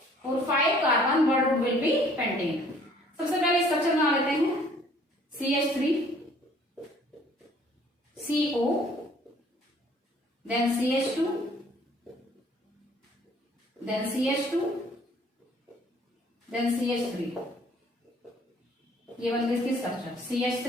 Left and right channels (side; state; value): both; normal; correlation 0.58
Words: और 5 carbon word root will be pentane. सबसे पहले स्ट्रक्चर बना लेते हैं, CH3 CO, then CH2, then CH2, then CH3। ये बन गई इसकी structure CH3